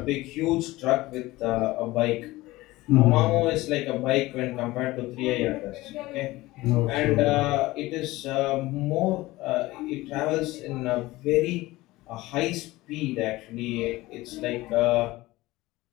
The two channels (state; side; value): quieter; right; 19.0 dB